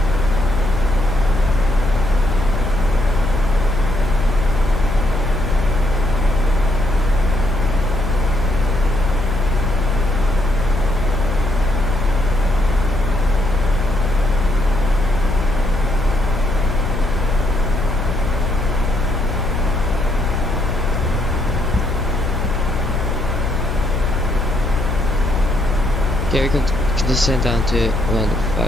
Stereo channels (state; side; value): noise; left; hum, 5 dB below the sound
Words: Okay, we can descend down to